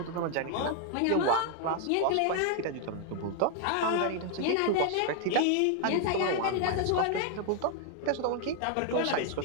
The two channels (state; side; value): different; both; correlation 0.00